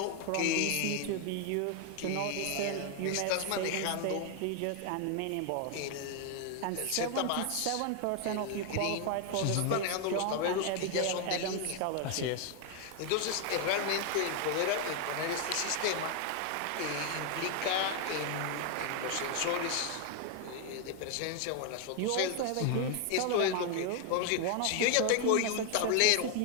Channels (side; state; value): both; different; correlation 0.01